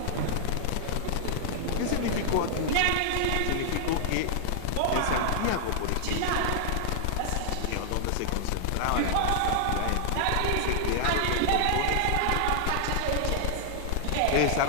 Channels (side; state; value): both; different; correlation -0.01